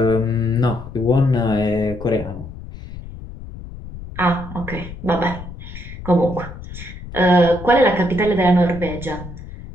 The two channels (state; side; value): noise; left; rumble, 12 dB below the sound